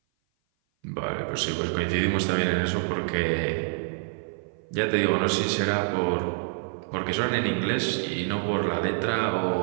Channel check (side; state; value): left; silent; 56 dB below the other